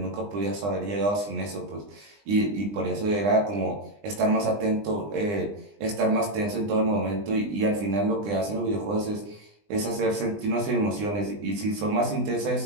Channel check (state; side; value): late; left; 20 ms